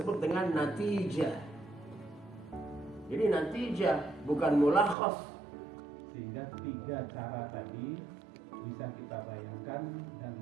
dengan natijah. Jadi natijah bukan mulakhas. Sehingga 3 cara tadi bisa kita bayangkan dan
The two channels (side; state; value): left; drops out; at 5.0 s